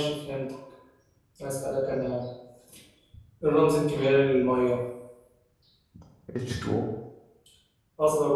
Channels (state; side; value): identical; both; correlation 1.00